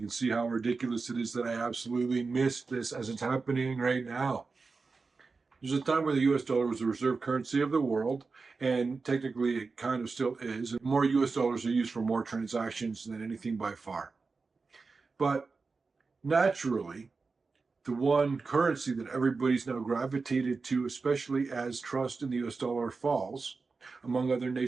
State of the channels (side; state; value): left; quieter; 4.3 dB